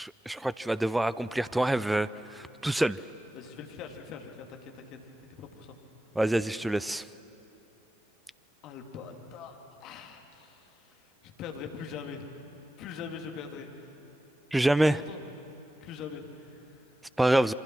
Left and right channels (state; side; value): normal; both; correlation 0.93